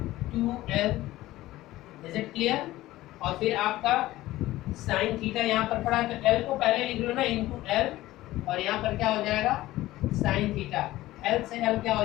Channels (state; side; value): quieter; right; 16.5 dB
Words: 2l। Is it clear. और फिर आपका साइन थीटा यहाँ पर पड़ा, तो l को पहले लिख लो ना, इनटू l, और यहाँ पर क्या हो जाएगा साइन थीटा, l से l क्या हो